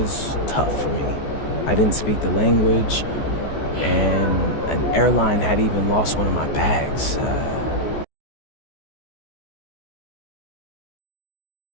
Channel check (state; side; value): late; right; 14 ms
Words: tough for me. I didn't speak the language, and an airline had even lost one of my bags.